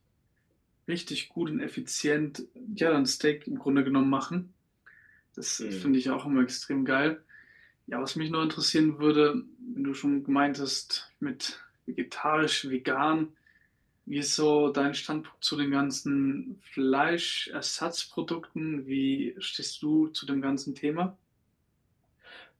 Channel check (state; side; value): identical; both; correlation 1.00